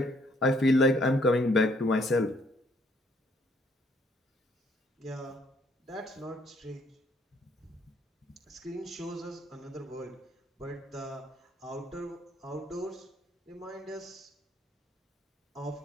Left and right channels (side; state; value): both; normal; correlation 0.66